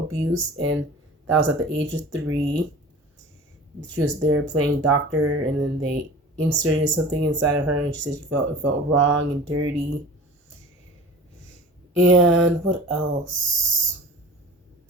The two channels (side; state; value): both; normal; correlation 0.40